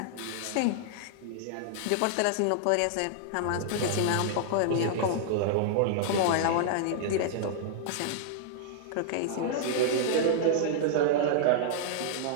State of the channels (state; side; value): different; both; correlation -0.01